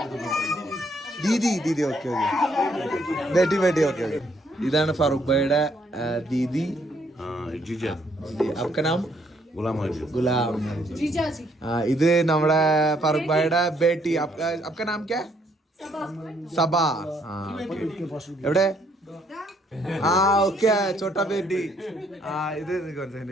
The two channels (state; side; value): normal; both; correlation 0.69